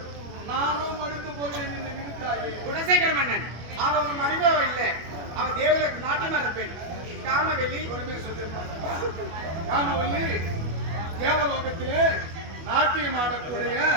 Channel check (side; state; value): left; late; 25 ms